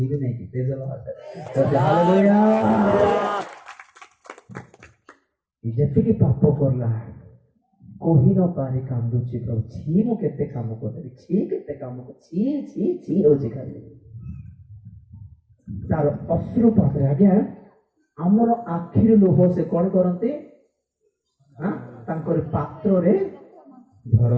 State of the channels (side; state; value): both; identical; correlation 1.00